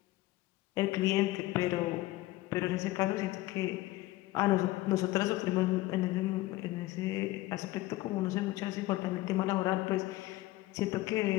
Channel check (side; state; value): right; quieter; 17.8 dB